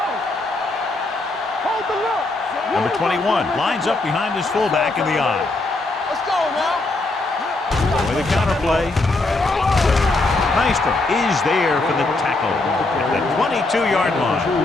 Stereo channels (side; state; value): right; quieter; 3.1 dB